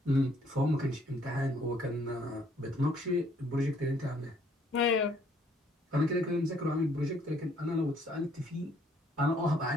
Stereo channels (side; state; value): both; normal; correlation 0.64